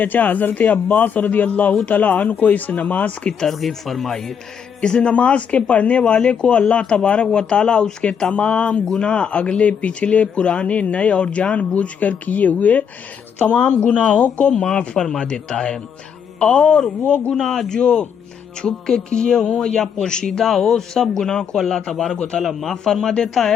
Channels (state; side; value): quieter; right; 7.4 dB